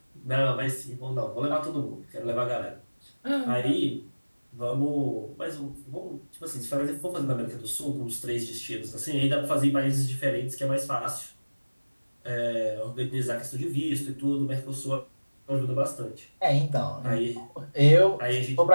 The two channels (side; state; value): both; inverted; correlation -1.00